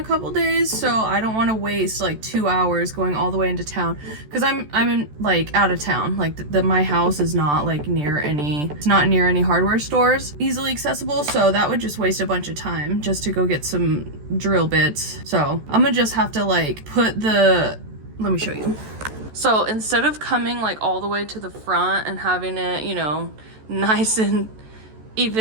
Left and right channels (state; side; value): late; left; 14 ms